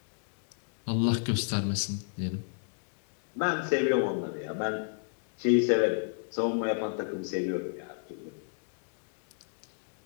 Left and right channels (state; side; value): silent; right; digital silence